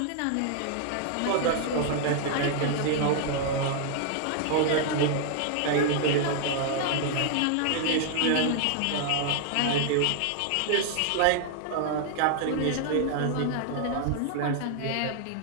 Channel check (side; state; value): both; different; correlation 0.00